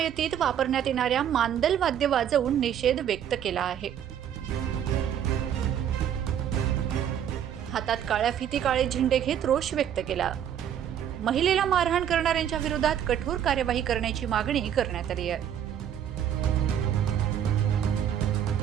वापरण्यात येणाऱ्या मांदल वाद्य वाजवून निषेध व्यक्त केला आहे। हातात काळ्या फिती, काळे झेंडे घेत रोष व्यक्त केला। महिलेला मारहाण करणाऱ्यांच्या विरोधात कठोर कार्यवाही करण्याची मागणी करण्यात आली आहे।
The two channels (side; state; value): left; quieter; 9.6 dB